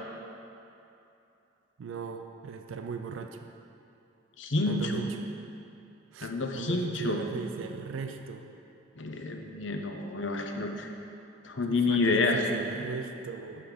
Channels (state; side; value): normal; both; correlation 0.40